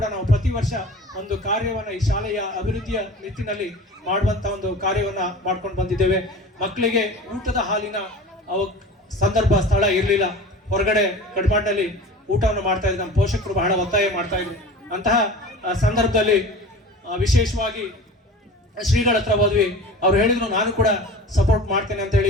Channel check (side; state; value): both; normal; correlation 0.38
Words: ನಾವು ಪ್ರತಿ ವರ್ಷ ಒಂದು ಕಾರ್ಯವನ್ನು ಈ ಶಾಲೆಯ ಅಭಿವೃದ್ಧಿಯ ನಿಟ್ಟಿನಲ್ಲಿ ಮಾಡುವಂತ ಒಂದು ಕಾರ್ಯವನ್ನ ಮಾಡ್ಕೊಂಡು ಬಂದಿದ್ದೇವೆ. ಮಕ್ಕಳಿಗೆ ಊಟದ ಹಾಲಿನ ಸಂದರ್ಭ ಸ್ಥಳ ಇರಲಿಲ್ಲ, ಹೊರಗಡೆ ಕಡ್ಮಾಡ್ನಲ್ಲಿ ಊಟವನ್ನು ಮಾಡ್ತಾ ಇದ್ರು. ನಮ್ಮ ಪೋಷಕರು ಬಹಳ ಒತ್ತಾಯ ಮಾಡ್ತಾ ಇದ್ರು. ಅಂತಹ ಸಂದರ್ಭದಲ್ಲಿ ವಿಶೇಷವಾಗಿ ಶ್ರೀಗಳ ಹತ್ರ ಹೋದ್ವಿ. ಅವ್ರು ಹೇಳಿದ್ರು ನಾನು ಕೂಡ ಸಪೋರ್ಟ್ ಮಾಡ್ತೇನೆ